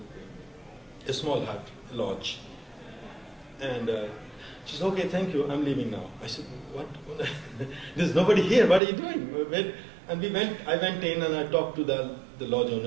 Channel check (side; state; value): left; drops out; at 8.8 s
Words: a small hut, a lodge. And she said, "Okay, thank you, I'm leaving now." I said, "What? There's nobody here, what are you doing?" And I went in and I talked to the lodge